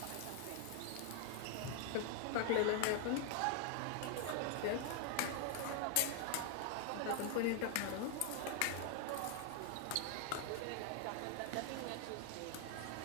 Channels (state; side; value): different; both; correlation 0.00